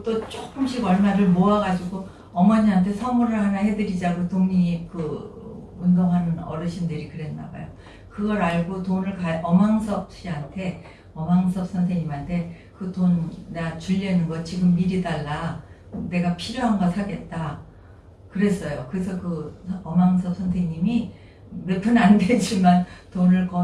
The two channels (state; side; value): identical; both; correlation 1.00